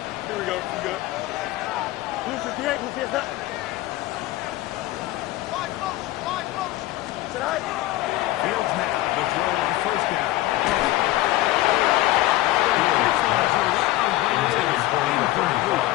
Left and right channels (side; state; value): right; quieter; 17.0 dB